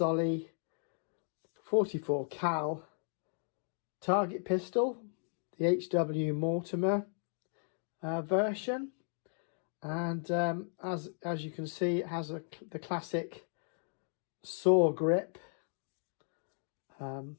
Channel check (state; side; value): silent; right; digital silence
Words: 44 cal target pistol, the HW Mortimer version, and as you can see, it has the classic saw grip